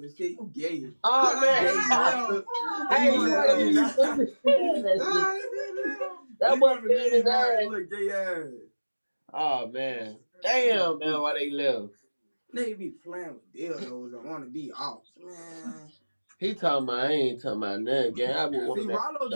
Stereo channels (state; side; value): inverted; both; correlation -1.00